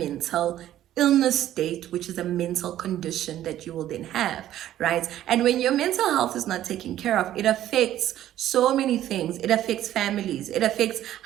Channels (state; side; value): quieter; left; 12.5 dB